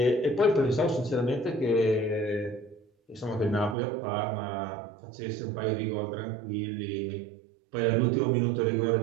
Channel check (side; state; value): left; drops out; at 3.8 s